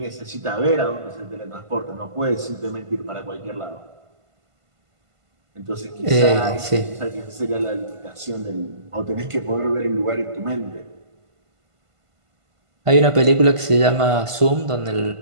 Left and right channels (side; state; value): left; late; 1.5 ms